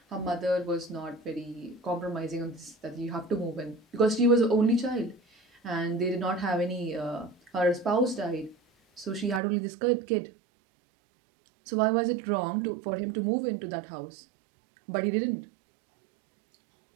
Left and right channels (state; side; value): drops out; left; at 9.4 s